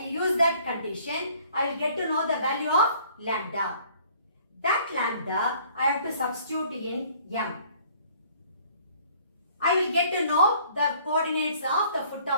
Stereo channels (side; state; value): both; inverted; correlation -0.57